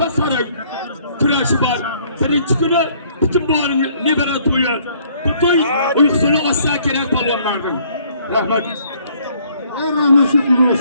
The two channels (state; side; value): inverted; both; correlation -0.62